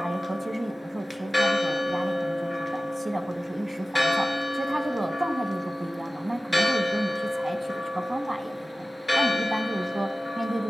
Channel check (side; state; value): both; normal; correlation 0.96